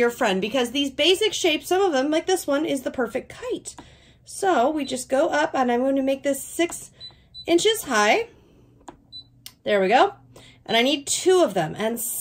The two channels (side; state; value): both; identical; correlation 1.00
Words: friend because these basic shapes, some of them, like this one, is the perfect kite. So we just go up, and I'm going to make this 6 inches high. There we go. And I need 2 of them and